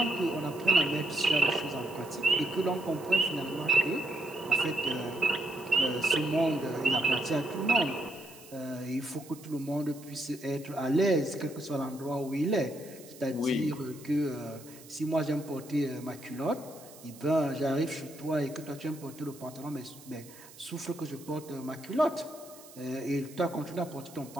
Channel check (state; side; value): noise; right; hiss, 20 dB below the sound